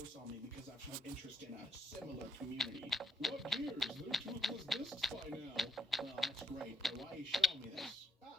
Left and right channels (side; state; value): both; normal; correlation 0.75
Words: on me because I've shown interest in a similar community. What gears? They're toothless discs by now. Well, that's great, but why are you showing me this?